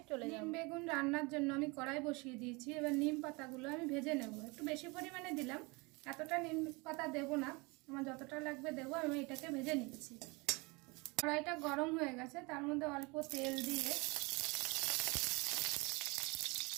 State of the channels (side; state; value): left; quieter; 27.2 dB